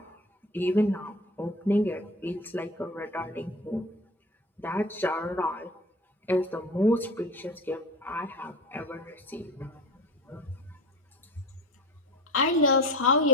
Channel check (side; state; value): both; normal; correlation 0.33